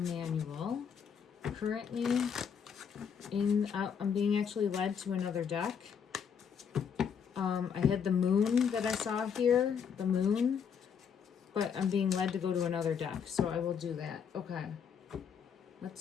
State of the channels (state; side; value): quieter; right; 7.2 dB